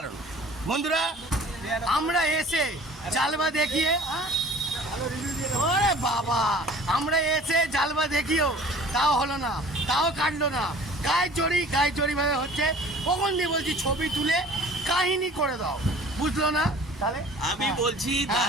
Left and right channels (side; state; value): both; normal; correlation 0.47